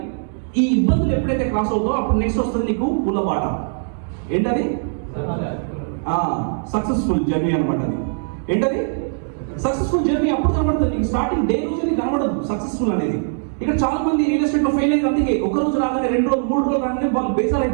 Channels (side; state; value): left; silent; digital silence